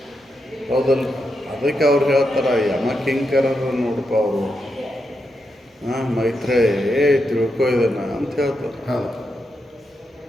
ಹೌದಲ್ಲ, ಅದಕ್ಕೆ ಅವ್ರು ಹೇಳ್ತಾರೆ, ಯಮಕಿಂಕರರು ನೋಡಪ್ಪ ಅವರು, ಮೈತ್ರೇಯ ತಿಳ್ಕೊ ಇದನ್ನ ಅಂತ ಹೇಳ್ತಾರೆ. ಹೌದು.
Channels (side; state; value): both; normal; correlation 0.85